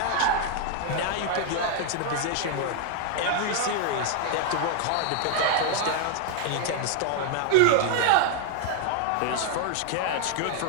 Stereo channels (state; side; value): different; both; correlation 0.00